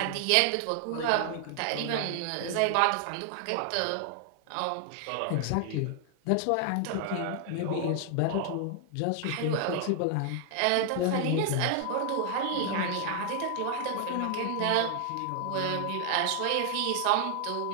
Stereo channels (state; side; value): different; both; correlation 0.00